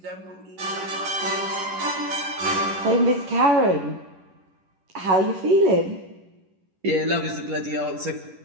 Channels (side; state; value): left; late; 11 ms